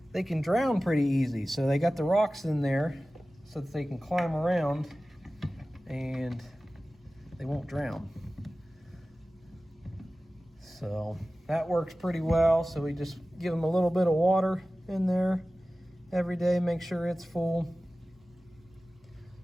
they can drown pretty easy. So they got the rocks in there so that they can climb around and they won't drown. So that works pretty well. So we just give them a little bit of water in there every day, make sure it's full.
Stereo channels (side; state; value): both; normal; correlation 0.96